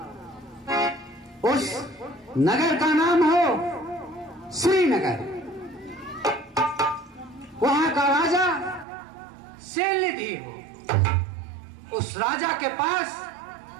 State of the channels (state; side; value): drops out; left; at 8.8 s